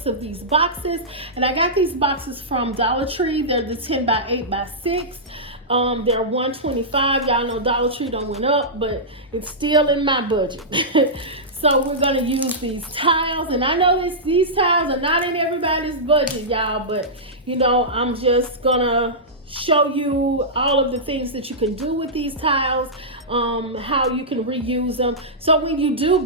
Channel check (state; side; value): normal; both; correlation -0.14